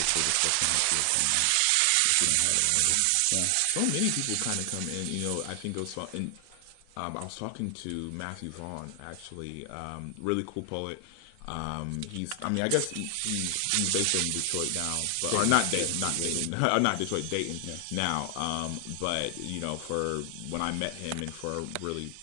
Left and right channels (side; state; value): both; different; correlation 0.00